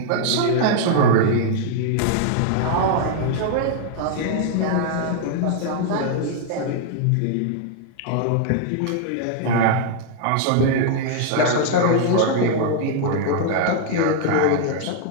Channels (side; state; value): both; different; correlation -0.01